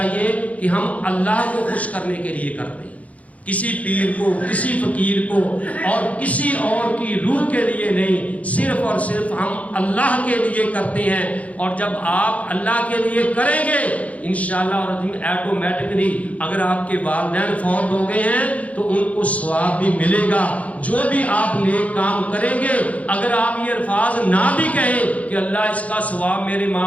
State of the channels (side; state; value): right; late; 0.067 ms